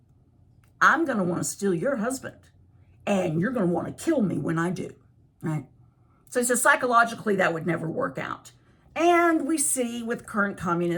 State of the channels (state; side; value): identical; both; correlation 1.00